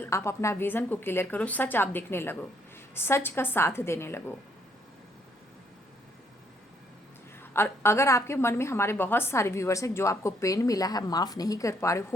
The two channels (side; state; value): both; normal; correlation 0.70